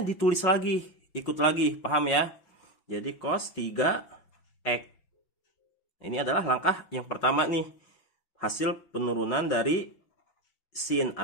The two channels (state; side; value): late; right; 5.9 ms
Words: ditulis lagi, ikut lagi, paham ya? Jadi cos 3x. Ini adalah langkah yang pertama nih, hasil penurunan dari sin